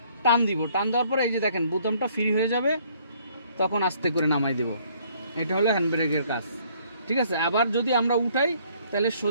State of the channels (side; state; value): both; inverted; correlation -0.63